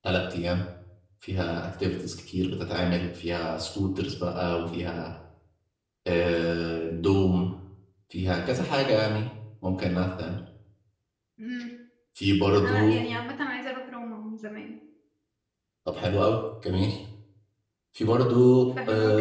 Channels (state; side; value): identical; both; correlation 1.00